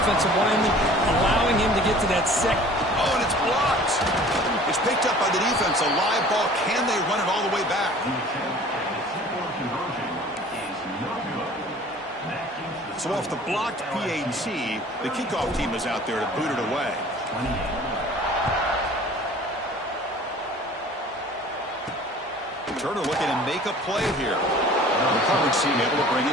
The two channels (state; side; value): normal; both; correlation 0.47